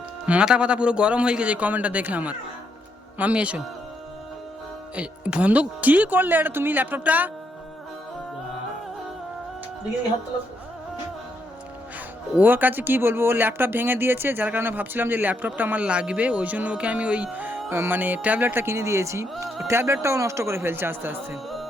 মাথা পাতা পুরো গরম হয়ে গেছে এই কমেন্টটা দেখে আমার। মাম্মি এসো। বন্ধ কি করলে এটা তুমি? ল্যাপটপটা ওর কাছে কি বলবো, ও ল্যাপটপ ভেঙে দিয়েছে, যার কারণে ভাবছিলাম যে ল্যাপটপটা আমার লাগবে, ওই জন্য ওকে আমি ওই মানে ট্যাবলেটটা কিনে দিয়েছি। ট্যাবলেটটাও নষ্ট করে ফেলছে আস্তে আস্তে।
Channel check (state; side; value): normal; both; correlation 0.77